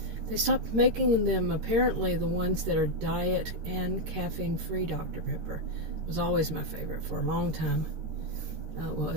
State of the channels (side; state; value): left; late; 13 ms